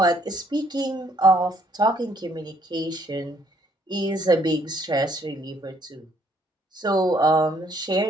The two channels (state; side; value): normal; both; correlation 0.66